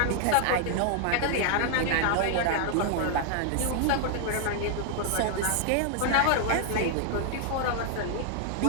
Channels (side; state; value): both; different; correlation 0.00